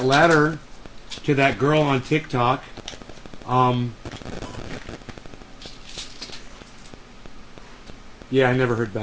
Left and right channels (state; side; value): identical; both; correlation 1.00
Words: letter to that girl on TikTok. Yeah, I never heard